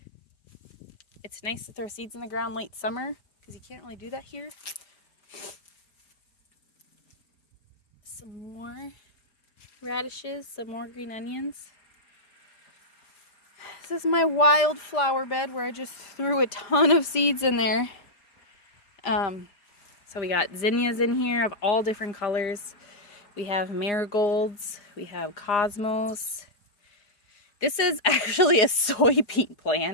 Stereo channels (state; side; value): late; right; 5.0 ms